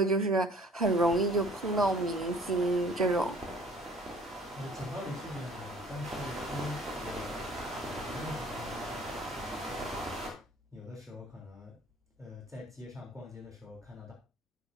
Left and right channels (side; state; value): both; normal; correlation 0.53